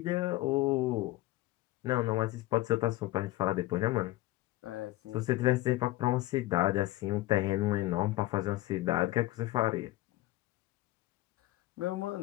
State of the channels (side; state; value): right; quieter; 17.3 dB